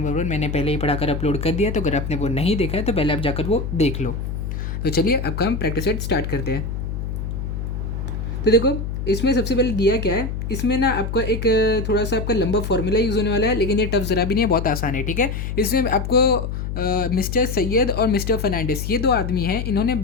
1 मैंने पहले ही पढ़ाकर अपलोड कर दिया, तो अगर आपने वो नहीं देखा है तो पहले आप जाकर वो देख लो। तो चलिए अब का हम प्रैक्टिस सेट स्टार्ट करते हैं। तो देखो, इसमें सबसे पहले दिया क्या है, इसमें ना आपका एक थोड़ा सा आपका लंबा फॉर्मूला यूज़ होने वाला है, लेकिन ये टफ ज़रा भी नहीं है, बहुत आसान है। ठीक है, इसमें आपको मिस्टर सैयद और मिस्टर फर्नांडिस ये दो आदमी हैं, इन्होंने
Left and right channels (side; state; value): left; noise; hum, 4 dB below the sound